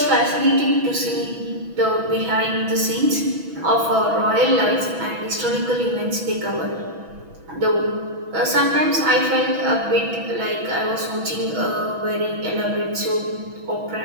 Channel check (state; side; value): late; left; 6.1 ms